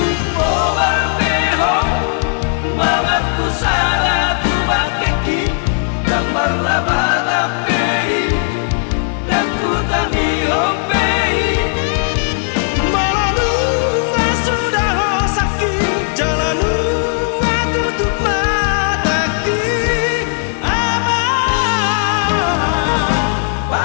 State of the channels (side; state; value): right; silent; digital silence